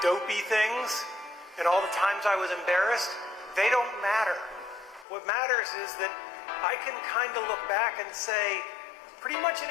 dopey things and all the times I was embarrassed, they don't matter. What matters is that I can kind of look back and say, pretty much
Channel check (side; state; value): right; drops out; at 5.1 s